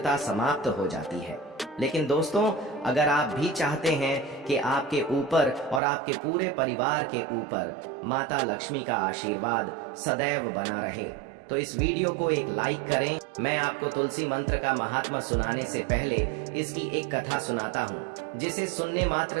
समाप्त हो जाती है। लेकिन दोस्तों, अगर आप भी चाहते हैं कि आपके ऊपर और आपके पूरे परिवार के ऊपर माता लक्ष्मी का आशीर्वाद सदैव बना रहे, तो इस वीडियो को एक लाइक करें। मैं आपको तुलसी मंत्र का महात्मा सुनाने से पहले इसकी एक कथा सुनाता हूँ, जिसे सुनने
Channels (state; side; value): drops out; left; at 5.8 s